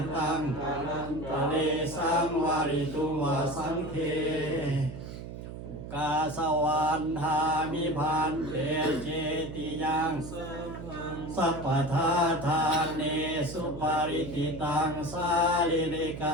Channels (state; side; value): noise; right; hum, 10 dB below the sound